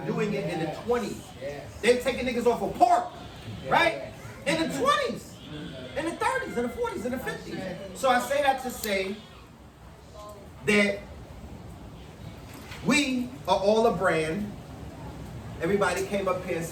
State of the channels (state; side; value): identical; both; correlation 1.00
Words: it in the 20s. They were taking niggas off of pork, right? In the 20s, in the 30s, in the 40s, in the 50s. So I say that to say that we are all a brand. Everybody came up here and